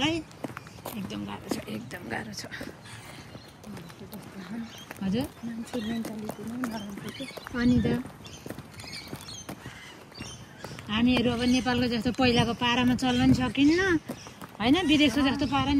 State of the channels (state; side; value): identical; both; correlation 1.00